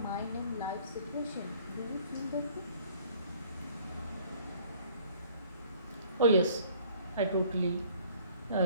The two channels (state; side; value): inverted; both; correlation -0.56